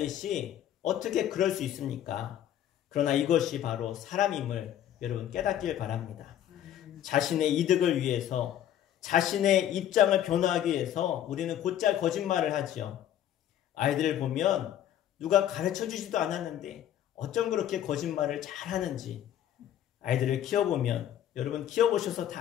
어떻게 그럴 수 있습니까? 그러나 이것이 바로 사람임을 여러분 깨닫길 바랍니다. 자신의 이득을 위해서, 자신의 입장을 변화하기 위해서 우리는 곧잘 거짓말을 하지요. 아이들을 보면 누가 가르쳐 주지도 않았는데 어쩜 그렇게 거짓말을 잘하는지 아이들을 키워보면 여러분 키워보셔서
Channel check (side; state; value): right; quieter; 11.1 dB